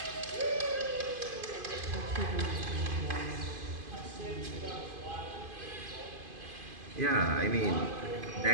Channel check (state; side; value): late; left; 2.5 ms